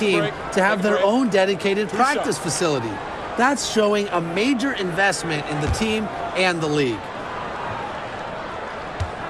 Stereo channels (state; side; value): identical; both; correlation 1.00